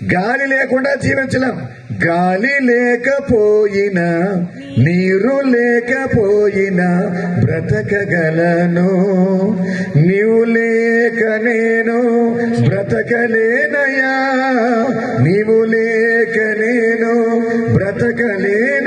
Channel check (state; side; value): identical; both; correlation 1.00